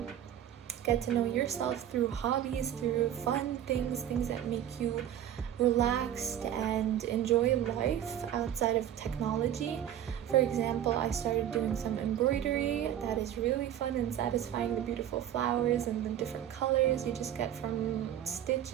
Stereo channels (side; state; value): left; quieter; 10.9 dB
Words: Get to know yourself through hobbies, through fun things that make you relaxed and enjoy life outside of technology. For example, I started doing some embroidery that is really fun and satisfying, the beautiful flowers and the different colors you just get from